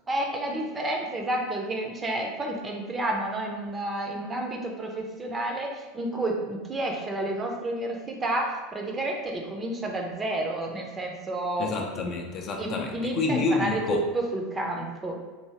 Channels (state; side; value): normal; both; correlation 0.47